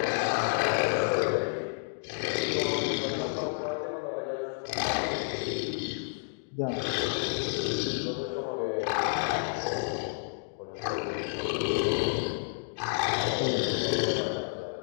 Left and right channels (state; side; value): silent; right; digital silence